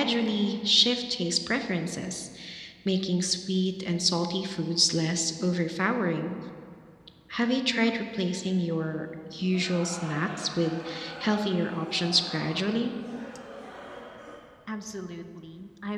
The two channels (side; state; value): both; identical; correlation 1.00